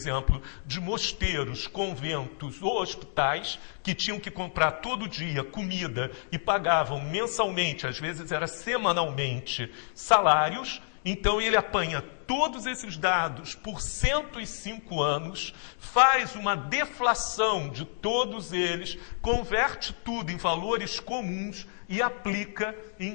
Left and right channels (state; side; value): silent; right; digital silence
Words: de mosteiros, conventos ou hospitais que tinham que comprar todo dia comida e pagavam mensalmente, às vezes era semanalmente, salários. Então ele apanha todos esses dados por 105 anos, faz uma deflação de todos eles, converte tudo em valores comuns e aplica,